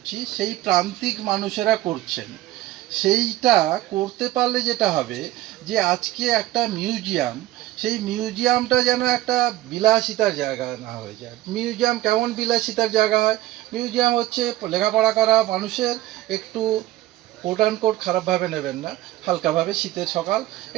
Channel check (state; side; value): quieter; left; 15.7 dB